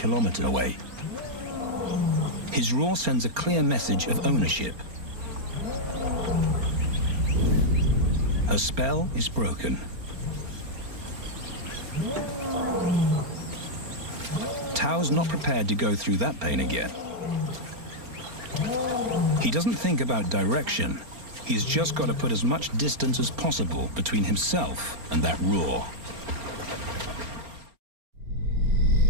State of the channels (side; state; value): left; late; 4.3 ms